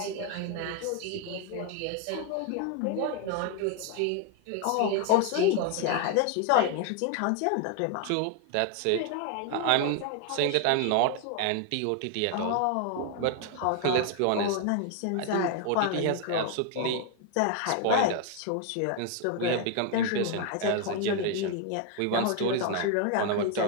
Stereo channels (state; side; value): different; both; correlation 0.00